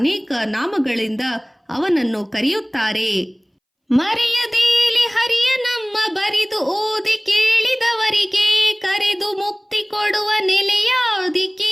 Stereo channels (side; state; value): both; identical; correlation 1.00